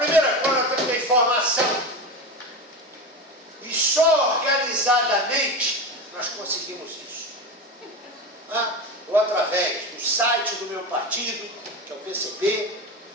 coisa é a informação. E só organizadamente nós conseguimos isso. Ou através do site do meu partido, que é o PCB,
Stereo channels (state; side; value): normal; both; correlation 0.23